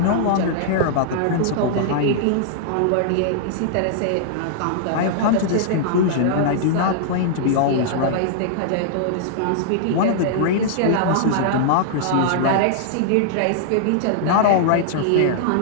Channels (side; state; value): both; different; correlation -0.01